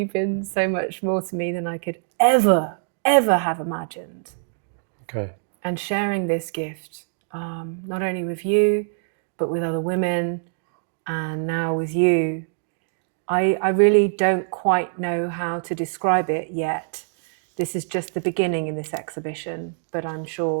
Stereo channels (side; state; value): left; silent; digital silence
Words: been so much more to me than I could ever have imagined. Okay. And sharing this gift, not only with you, but with other women, and now with you, I really don't quite know how to describe it yet. This is just the beginning in this exhibition, but I'm